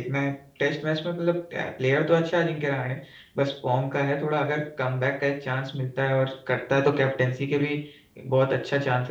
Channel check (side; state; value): both; identical; correlation 1.00